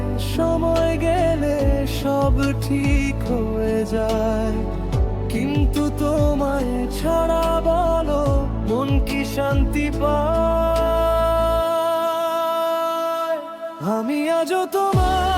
সময় গেলে সব ঠিক হয়ে যায়, কিন্তু তোমায় ছাড়া বলো মন কি শান্তি পায়? আমি আজও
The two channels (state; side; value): identical; both; correlation 1.00